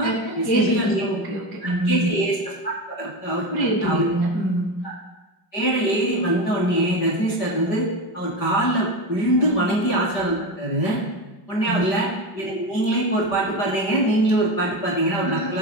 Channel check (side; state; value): right; late; 5.1 ms